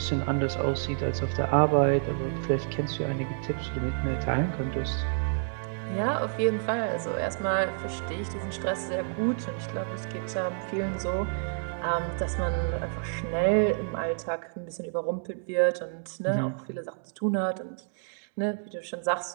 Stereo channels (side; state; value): left; silent; digital silence